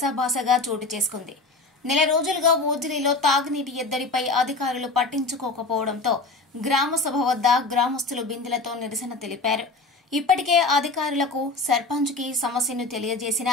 చోటు చేసుకుంది. నెల రోజులుగా ఓజిలిలో తాగునీటి ఎద్దడిపై అధికారులు పట్టించుకోకపోవడంతో గ్రామ సభ వద్ద గ్రామస్తులు బిందెలతో నిరసన తెలిపారు. ఇప్పటికే అధికారులకు సర్పంచ్కి సమస్యను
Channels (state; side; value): quieter; right; 3.4 dB